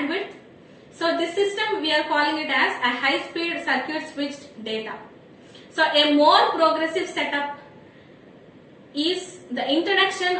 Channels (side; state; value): both; identical; correlation 1.00